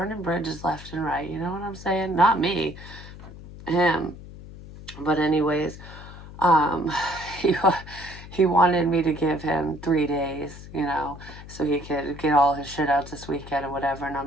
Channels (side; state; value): left; noise; hum, 15 dB below the sound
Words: bridges left and right. You know what I'm saying? Not me, him. But anyways, um, he he wanted me to give him 3 days, so he could get all his shit out this weekend or whatever. And